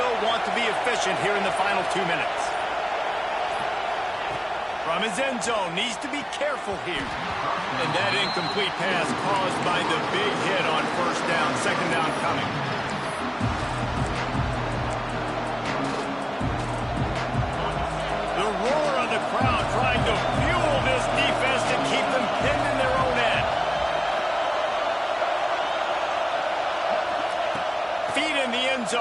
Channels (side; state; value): both; identical; correlation 1.00